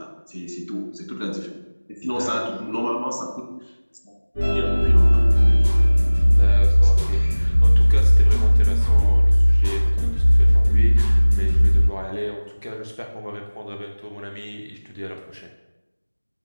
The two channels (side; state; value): both; inverted; correlation -1.00